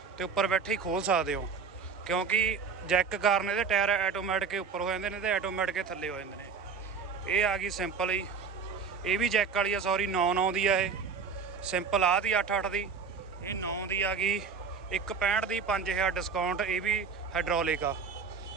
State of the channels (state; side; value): quieter; left; 5.7 dB